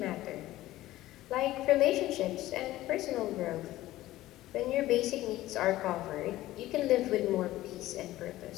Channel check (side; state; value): right; quieter; 15.9 dB